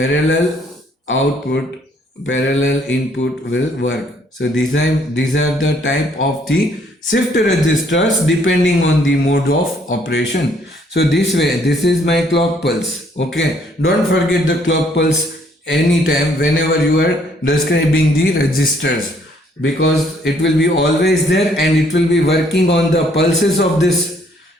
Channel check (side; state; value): both; normal; correlation 0.65